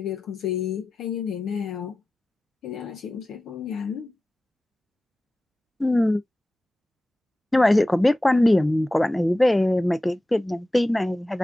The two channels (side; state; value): both; normal; correlation 0.95